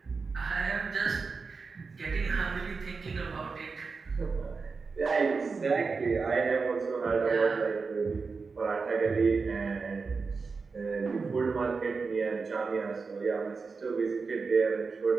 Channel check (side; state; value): left; quieter; 4.7 dB